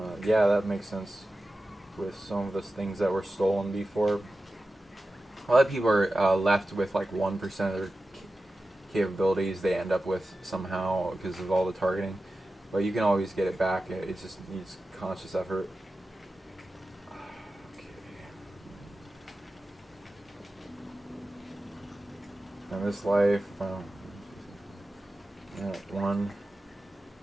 Yeah, that makes sense with some of the things that were stolen before. A lot of people are left with like 1% of their capabilities they end up with somehow because of all the targeting. But you can always get it back. It just needs conscious effort. Okay. In this life, one.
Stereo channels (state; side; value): normal; both; correlation 0.94